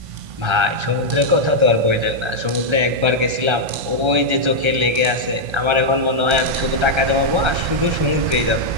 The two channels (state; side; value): late; left; 1.3 ms